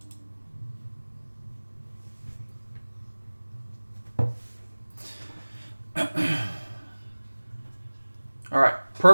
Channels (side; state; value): both; inverted; correlation -1.00